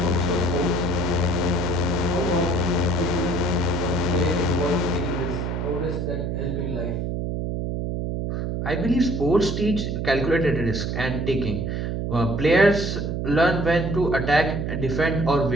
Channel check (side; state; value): right; noise; hum, 2 dB below the sound